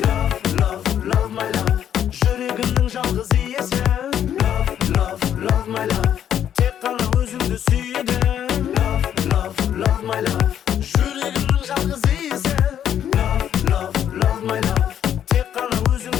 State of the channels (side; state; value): right; quieter; 9.9 dB